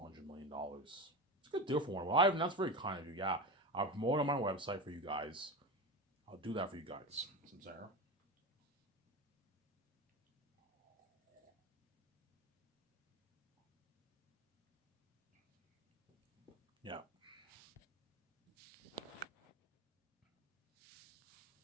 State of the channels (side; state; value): both; normal; correlation 0.22